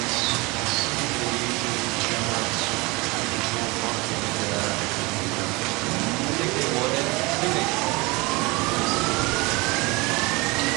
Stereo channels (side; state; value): left; quieter; 25.0 dB